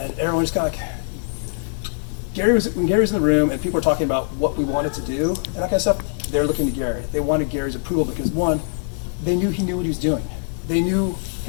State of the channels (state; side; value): silent; right; 64 dB below the other